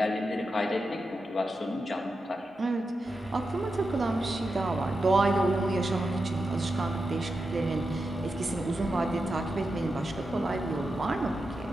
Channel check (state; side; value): normal; both; correlation 0.89